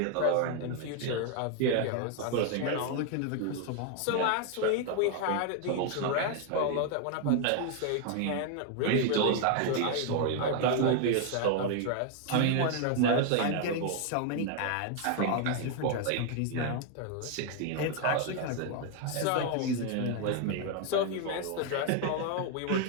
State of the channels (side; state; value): both; different; correlation 0.00